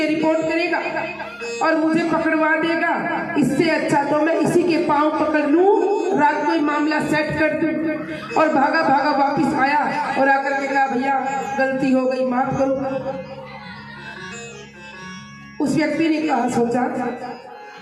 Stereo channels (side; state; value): both; identical; correlation 1.00